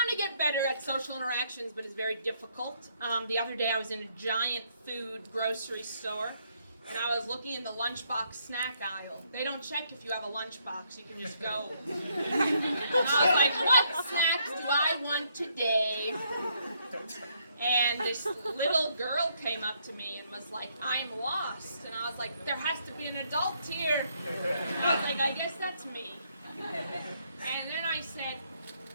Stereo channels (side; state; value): both; inverted; correlation -0.71